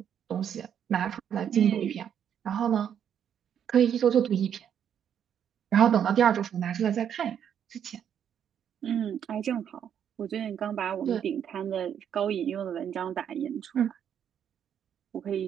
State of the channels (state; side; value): quieter; left; 8.8 dB